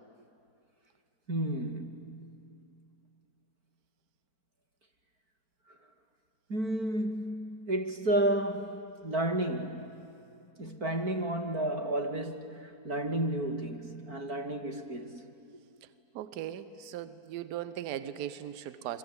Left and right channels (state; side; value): late; left; 4.5 ms